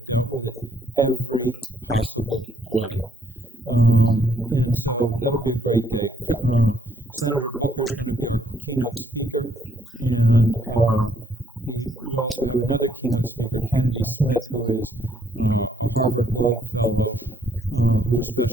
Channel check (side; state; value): both; normal; correlation 0.69